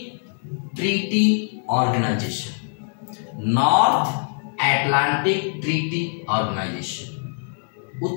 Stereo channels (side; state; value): right; silent; 60 dB below the other